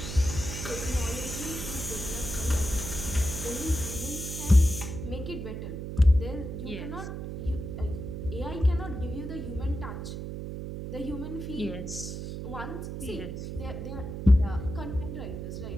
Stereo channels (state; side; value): noise; right; hum, 6 dB below the sound